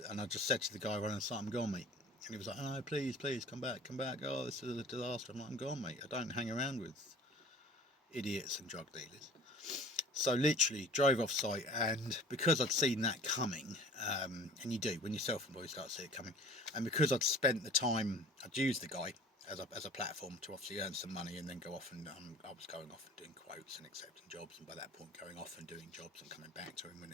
to the guy running the site, I'm gone, mate. And he was like, oh, please come back. Oh, this is a disaster. I'm like, I'm gone, mate. I don't hang around with idiots and drug dealers. So literally drove off site, and because I'd seen that coming, and you do when you're self-employed, you start to see it coming, and because I'd spent the time, I'd used the guy as a platform to obviously earn some money and then go off, and I was going off and doing quotes and accepting jobs, and by that point going off and doing jobs and coming back to him when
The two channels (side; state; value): both; normal; correlation 0.45